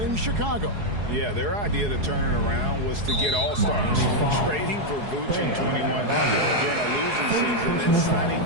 in Chicago. Yeah, their idea to turn it around was to get all-stars. Trading for Vooch in 21 during a losing season, then signing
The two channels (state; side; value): late; left; 4.8 ms